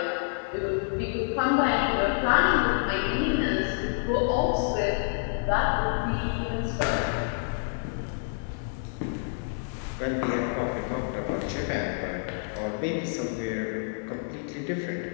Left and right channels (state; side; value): silent; right; digital silence